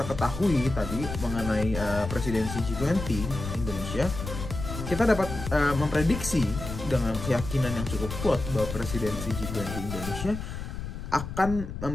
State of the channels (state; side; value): noise; left; rumble, 7 dB below the sound